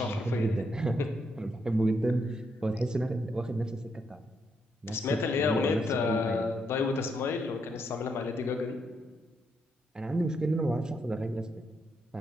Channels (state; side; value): normal; both; correlation 0.78